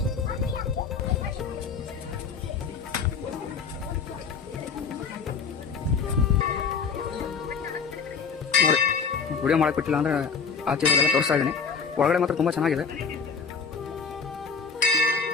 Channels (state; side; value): quieter; right; 5.7 dB